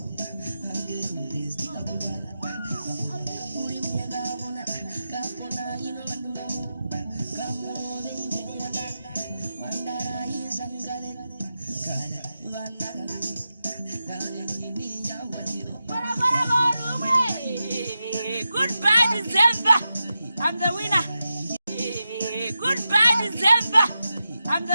Goodbye, December. I'm the winner. Goodbye, December. I'm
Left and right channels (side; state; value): both; inverted; correlation -0.91